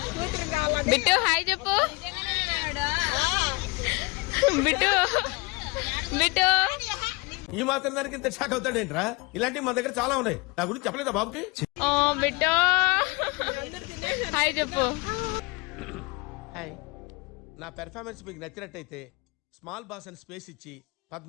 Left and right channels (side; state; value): right; quieter; 26.1 dB